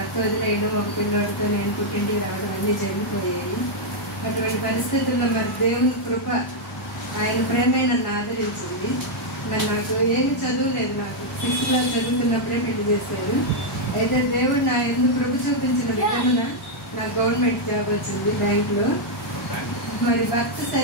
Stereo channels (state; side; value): normal; both; correlation -0.02